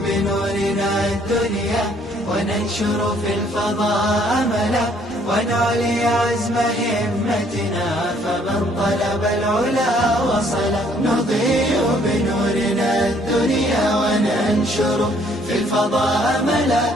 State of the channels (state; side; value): normal; both; correlation 0.64